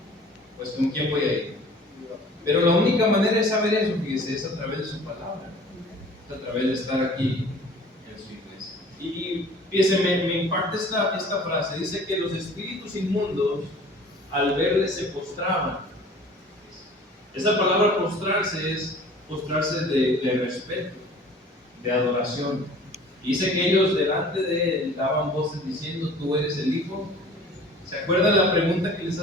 pues ¿con quién voy a ir? Pero la única manera de saber eso, fíjese, es a través de su palabra, es a través de estar aquí en su iglesia. Y fíjese, me impacta esta frase, dice que los espíritus inmundos al verle se postraban. Esa palabra postrarse es postrarse de respeto, de adoración. Y dice que ellos delante de él daban voces diciendo, tú eres el Hijo. ¿Se acuerdan la pregunta que les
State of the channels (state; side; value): normal; both; correlation 0.47